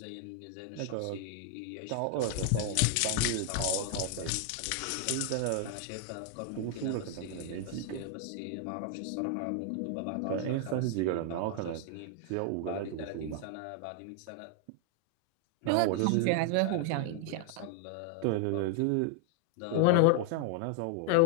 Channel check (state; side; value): different; both; correlation 0.00